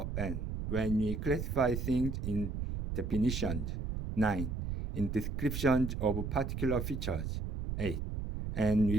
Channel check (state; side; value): noise; right; rumble, 3 dB below the sound